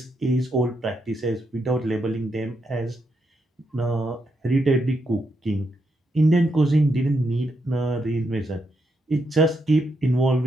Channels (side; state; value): both; normal; correlation 0.81